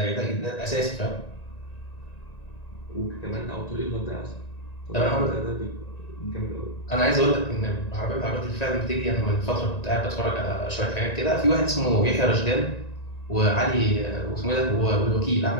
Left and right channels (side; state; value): right; late; 1.9 ms